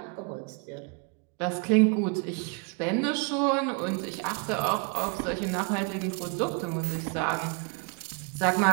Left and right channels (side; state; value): left; quieter; 32.4 dB